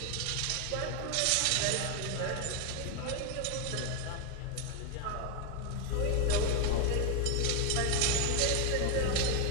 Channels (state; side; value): different; both; correlation 0.01